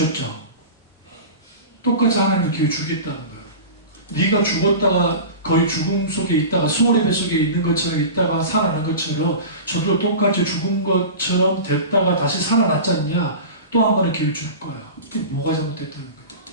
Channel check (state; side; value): inverted; both; correlation -0.32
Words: 똑같이 하나님이 기회 주겠다는 거예요. 네가 죽었다가 거의 죽음 속에 있다가 수월의 뱃속에 있는 것처럼 있다가 살아난 것처럼 저도 똑같이 죽은 것처럼 됐다가 다시 살아났지 않냐? 또 한 번의 기회를 줄 거야. 그게 뭐가 잘못됐다는